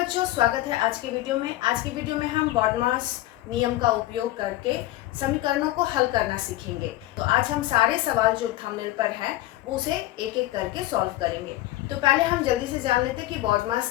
स्वागत है आज की वीडियो में। आज की वीडियो में हम बॉडमास नियम का उपयोग करके समीकरणों को हल करना सीखेंगे। तो आज हम सारे सवाल जो थंबनेल पर हैं वो उसे एक एक करके सॉल्व करेंगे। तो पहले हम जल्दी से जान लेते हैं कि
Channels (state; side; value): quieter; right; 16.3 dB